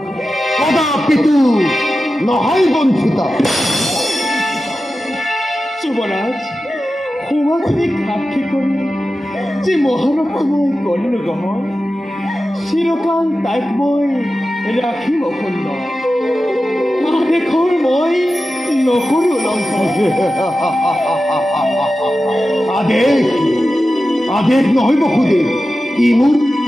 নহয় বঞ্চিতা। যুৱৰাজ, সমাজে সাক্ষী কৰি যি মহানতা মই কৰিলো গ্ৰহণ, চিৰকাল তাইক মই ৰাখিম অখণ্ড। আদেশৰ মই নকৰো লংঘন। আদেশ নহয় বসুদেৱ, ই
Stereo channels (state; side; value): normal; both; correlation 0.93